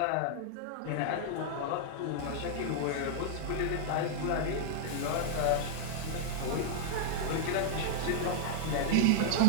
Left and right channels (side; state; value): both; different; correlation -0.01